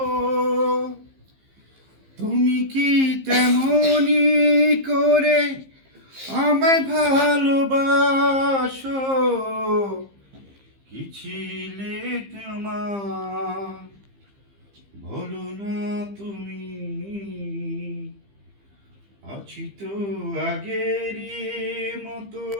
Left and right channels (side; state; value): left; late; 15 ms